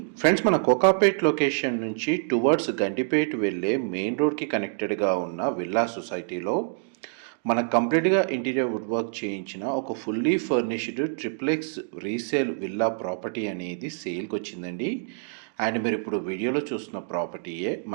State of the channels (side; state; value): left; silent; digital silence